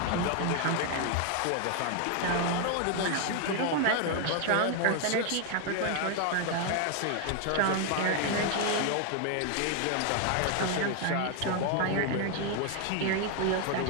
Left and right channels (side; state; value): both; different; correlation 0.00